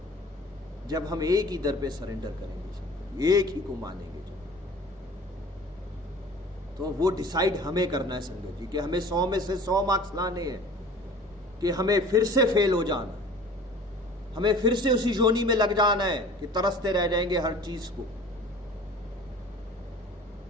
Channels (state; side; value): normal; both; correlation 0.45